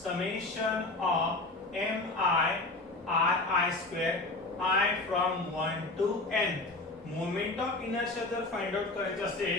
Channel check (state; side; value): quieter; right; 3.0 dB